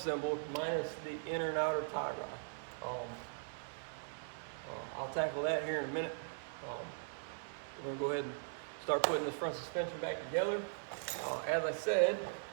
minus the inner and outer tie rod. I'll tackle that here in a minute. We're gonna go ahead and start putting this front suspension back together. As I said,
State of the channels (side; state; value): left; silent; 51 dB below the other